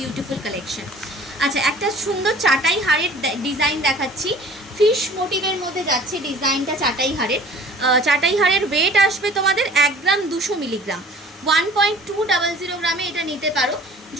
কালেকশন। আচ্ছা একটা সুন্দর চাটাই হারের ডিজাইন দেখাচ্ছি, ফিশ মোটিভের মধ্যে যাচ্ছে ডিজাইনটা চাটাই হারের ওয়েট আসবে তোমাদের 1 গ্রাম 200 মিলিগ্রাম, 1.200 গ্রামে এটা নিতে পারো।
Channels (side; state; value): both; normal; correlation 0.48